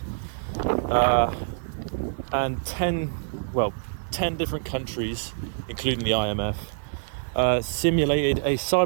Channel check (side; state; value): left; silent; 57 dB below the other